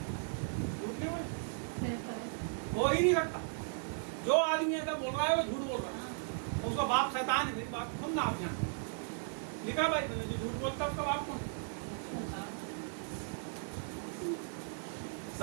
झूठ नहीं बोले, रहता है। हो ही नहीं सकता। जो आदमी ऐसा बोल रहा है वो झूठ बोल रहा है, उसका बाप शैतान है। मेरी बात सुनना आप यहाँ लिखा भाई मैंने, जो झूठ बोलता है उसका बाप कौन?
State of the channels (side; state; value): left; silent; 53 dB below the other